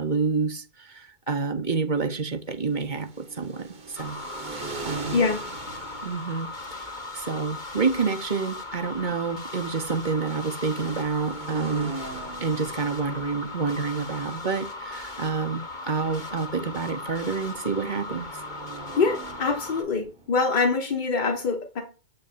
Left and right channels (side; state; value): right; late; 2.2 ms